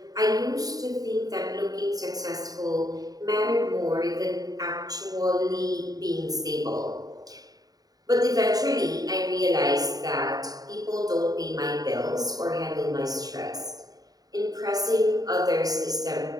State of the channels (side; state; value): left; late; 0.18 ms